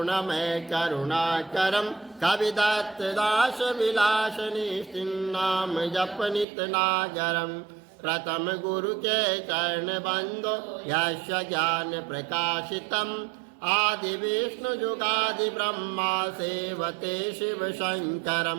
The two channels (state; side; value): drops out; left; at 6.5 s